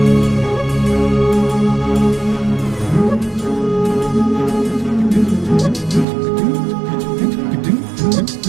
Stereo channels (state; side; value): drops out; left; at 6.1 s